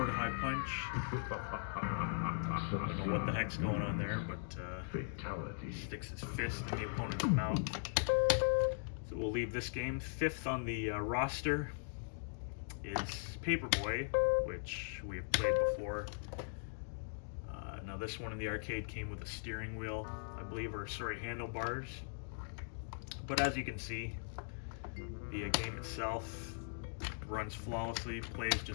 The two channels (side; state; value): right; silent; digital silence